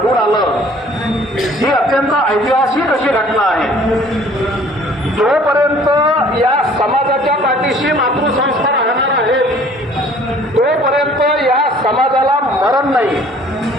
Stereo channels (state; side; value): normal; both; correlation 0.54